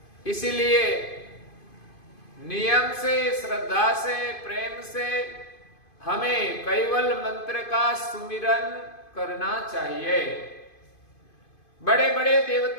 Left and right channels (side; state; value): right; late; 2.5 ms